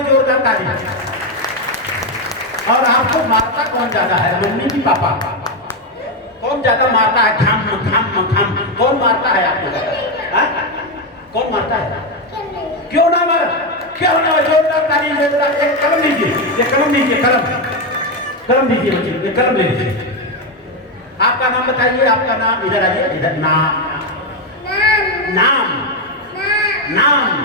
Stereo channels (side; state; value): both; normal; correlation 0.07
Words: जोरदार ताली। और आपको मारता कौन ज्यादा है, मम्मी की पापा? कौन ज्यादा मारता है? घाम घाम घाम कौन मारता है आपको ज्यादा? कौन मारता है? क्यों ना मार, क्यों ना? जोरदार ताली, जोरदार। एक कलम लीजिए, ये कलम लीजिए, कलम लीजिए बच्चे, ये कलम ले लीजिए। आपका नाम बताइए, आपका नाम। इधर आइए, इधर। नाम नाम नाम